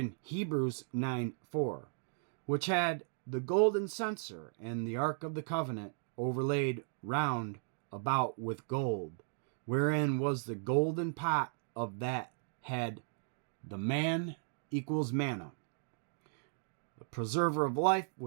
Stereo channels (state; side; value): silent; left; digital silence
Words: Hebrews 9:4, which had the golden censer and the Ark of the Covenant overlaid round about with gold, wherein was the golden pot of that had the man equals manna. The preserver of life